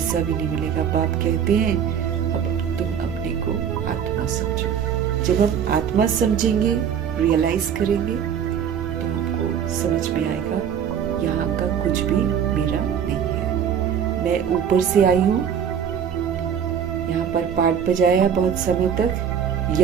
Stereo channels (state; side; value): quieter; left; 8.2 dB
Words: भी नहीं मिलेगा। बाप कहते हैं अब तुम अपने को आत्मा समझो। जब हम आत्मा समझेंगे, रियलाइज करेंगे तो हमको समझ में आएगा यहाँ का कुछ भी मेरा नहीं है। मैं ऊपर से आई हूँ, यहाँ पर पाठ बजाया बहुत समय तक,